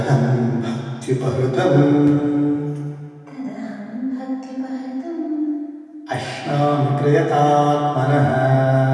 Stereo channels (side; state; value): both; identical; correlation 1.00